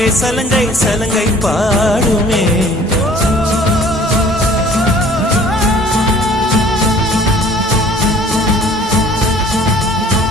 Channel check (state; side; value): normal; both; correlation 0.52